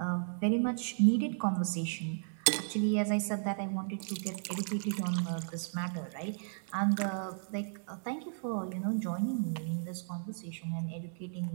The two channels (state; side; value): silent; left; digital silence